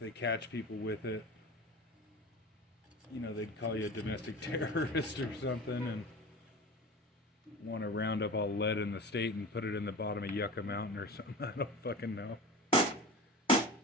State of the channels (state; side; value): normal; both; correlation 0.32